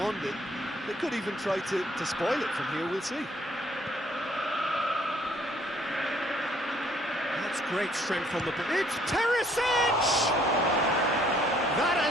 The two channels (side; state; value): both; normal; correlation 0.63